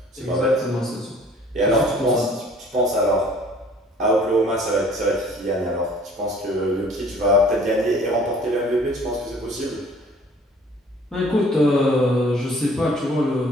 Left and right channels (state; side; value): normal; both; correlation 0.53